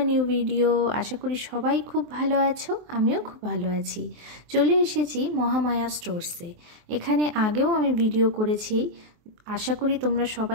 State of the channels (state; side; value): late; left; 23 ms